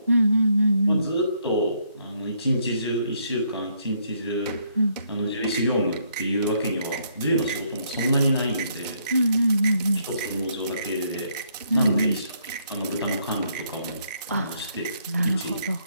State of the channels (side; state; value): both; inverted; correlation -0.71